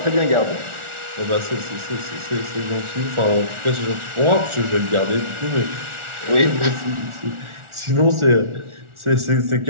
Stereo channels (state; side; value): late; left; 1.4 ms